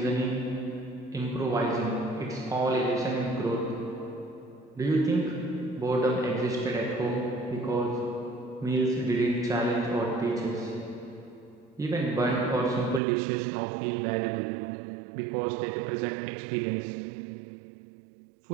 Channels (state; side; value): drops out; left; at 13.0 s